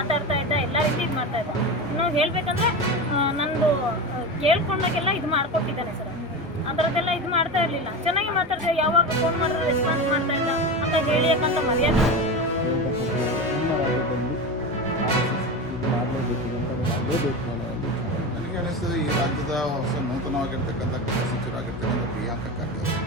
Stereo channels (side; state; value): both; normal; correlation 0.23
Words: ಇದ್ದ, ಎಲ್ಲ ರೀತಿ ಇದು ಮಾಡ್ತಾ ಇದ್ದ. ಇನ್ನು ಹೇಳಬೇಕಂದ್ರೆ ನಂದು ಕೇಳ್ಕೊಂಡಾಗೆಲ್ಲ ಇದು ಮಾಡ್ಕೊಟ್ಟಿದ್ದಾನೆ ಸರ್. ಆ ಥರದ್ದೆಲ್ಲ ಇದು ಮಾಡ್ತಾ ಇರಲಿಲ್ಲ, ಚೆನ್ನಾಗಿ ಮಾತಾಡ್ತಾ. ಯಾವಾಗ ಫೋನ್ ಮಾಡಿದ್ರೆ ರೆಸ್ಪಾನ್ಸ್ ಮಾಡ್ತಾ ಇದ್ದ. ಅಕ್ಕ ಹೇಳಿ ಯಾಕಂತ ಮರ್ಯಾದೆ. ನನಗೆ ಅನಿಸ್ತದೆ ಈ ರಾಜ್ಯದ ಹೊಸ ನೂತನವಾಗಿರ್ತಕ್ಕಂಥ ಗೃಹ ಸಚಿವರಾಗಿರ್ತಕ್ಕಂಥ ಪ್ರಿಯಾಂಕ ಖರ್ಗೆ